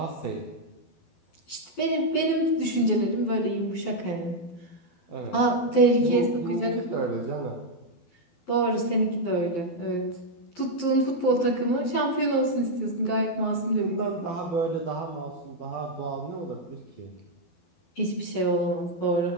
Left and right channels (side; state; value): right; late; 12 ms